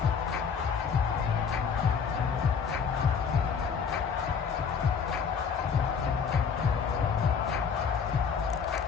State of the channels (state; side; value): quieter; right; 6.3 dB